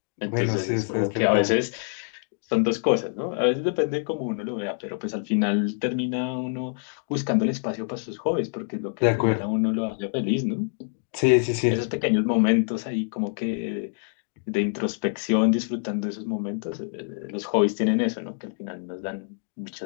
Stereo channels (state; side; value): silent; right; digital silence